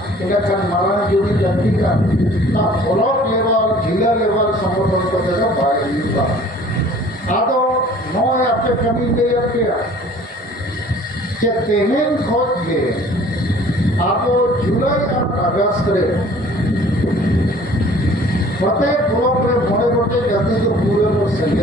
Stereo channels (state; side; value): normal; both; correlation 0.51